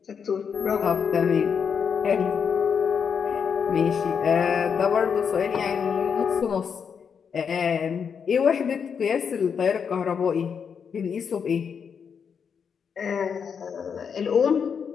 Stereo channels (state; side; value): quieter; right; 6.7 dB